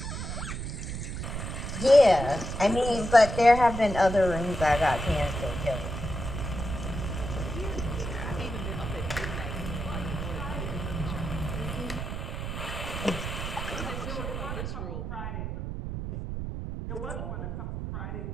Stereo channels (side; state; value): right; noise; rumble, 5 dB below the sound